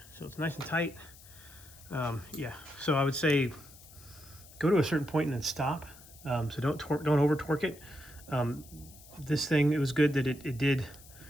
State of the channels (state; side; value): noise; left; hiss, 21 dB below the sound